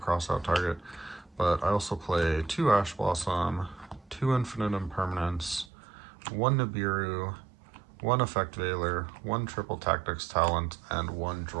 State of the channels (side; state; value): left; drops out; at 5.7 s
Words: target, but I also play 2 Ash Blossom, 2 Infinite Impermanence, 1 Nibiru, 1 Effect Veiler, 1 Triple Tactics Talent, and 1